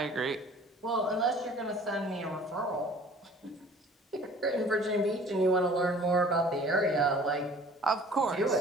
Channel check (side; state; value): both; normal; correlation 0.50